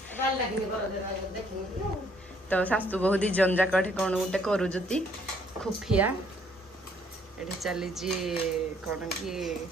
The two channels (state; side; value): normal; both; correlation 0.65